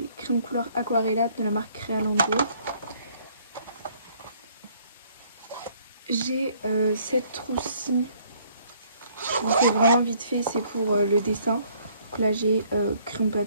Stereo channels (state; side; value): inverted; both; correlation -0.63